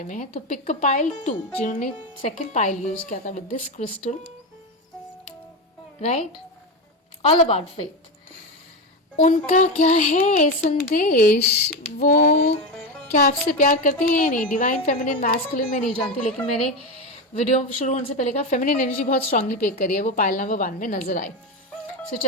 में है। तो पिक अ पाइल 2 जिन्होंने सेकेंड पाइल यूज किया था with this crystal, right, all about faith. उनका क्या है संदेश, वो क्या आपसे प्यार करते हैं या नहीं? डिवाइन फेमिनिन मैस्कुलिन मैं नहीं जानती लेकिन मैंने वीडियो शुरू होने से पहले कहा फेमिनिन एनर्जी बहुत स्ट्रांगली पिक करी है, वो पाइल नंबर 1 में नजर आई। सो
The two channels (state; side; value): normal; both; correlation 0.16